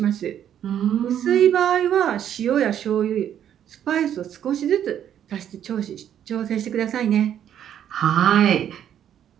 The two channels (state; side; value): quieter; left; 10.0 dB